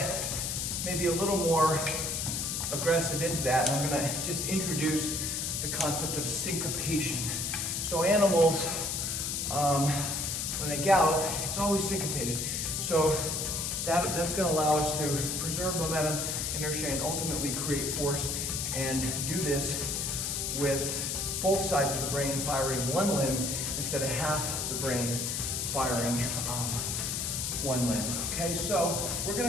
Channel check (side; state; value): left; noise; hiss, 1 dB below the sound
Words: maybe a little more aggressive into that. And I'm gonna just introduce the concept of syncopation. So animals, when they gallop, it's always syncopated. So that's gonna allow us to preserve momentum, inertia, and ultimately create force, and do this with both sides of the brain firing one limb instead of half the brain firing one limb. Okay, so we're